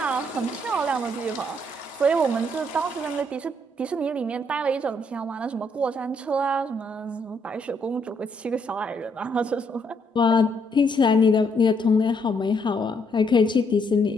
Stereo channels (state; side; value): normal; both; correlation 0.72